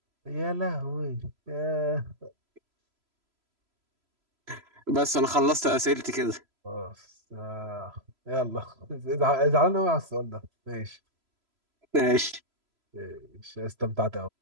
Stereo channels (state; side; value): late; left; 3.0 ms